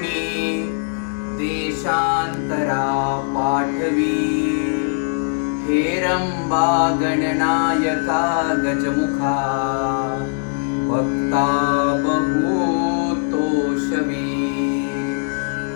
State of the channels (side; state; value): right; silent; 65 dB below the other